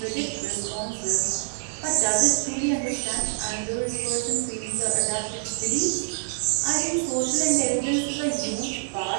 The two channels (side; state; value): left; silent; digital silence